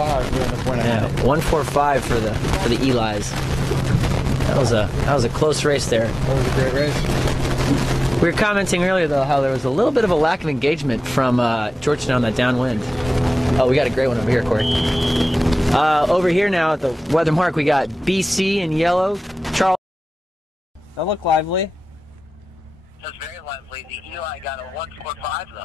we're in the point yeah, 145 for the Elis. That was a close race there. That was a great race. We were commenting earlier though how there was a little bit of a lack of engagement from Georgetown on that downwind. Oh, we got a great one over here, Corey. Over here now at the weather mark, we got BC in yellow, Charleston. That looked lively. That's very lively. The Eli got a 145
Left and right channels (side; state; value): both; normal; correlation 0.96